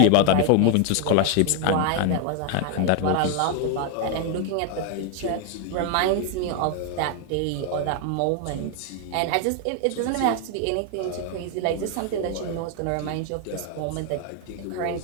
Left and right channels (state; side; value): different; both; correlation 0.00